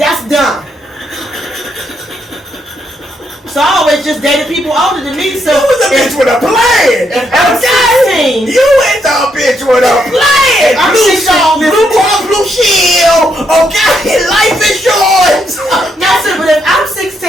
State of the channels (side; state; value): both; normal; correlation 0.77